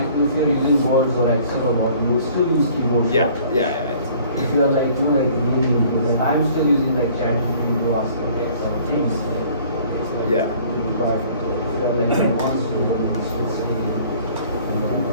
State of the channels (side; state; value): both; inverted; correlation -0.54